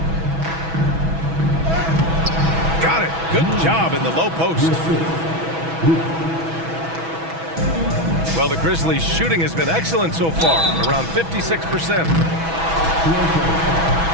Got it. Good job in the low post. Well, the Grizzlies' shooting has been excellent so far, around 56%.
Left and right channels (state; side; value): late; left; 6.1 ms